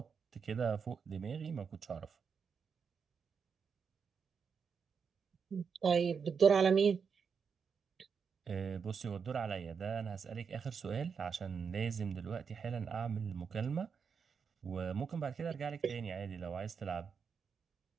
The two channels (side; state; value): left; quieter; 6.2 dB